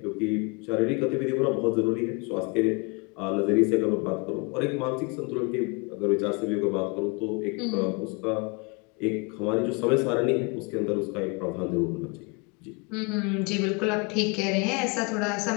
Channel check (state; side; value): quieter; right; 30.8 dB